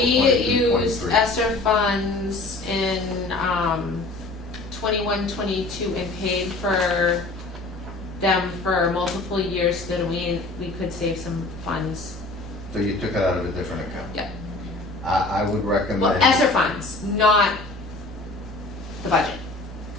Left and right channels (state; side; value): quieter; right; 3.1 dB